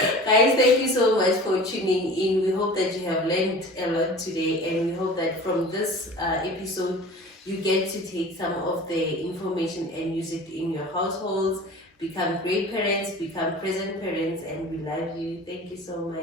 Guys, thank you so much for tuning in. We hope that you have learned a lot today, and we hope that from this episode you get to take some of the information and use it in your households. Become great parents, become present parents, and we love you. Thank you so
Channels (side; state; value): both; normal; correlation 0.40